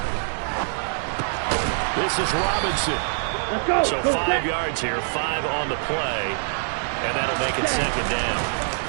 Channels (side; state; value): left; silent; digital silence